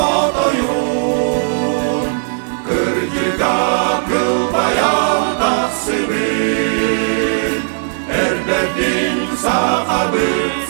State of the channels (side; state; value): left; silent; 58 dB below the other